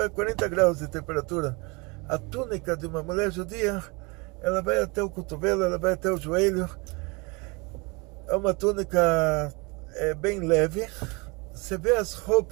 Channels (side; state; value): left; quieter; 28.4 dB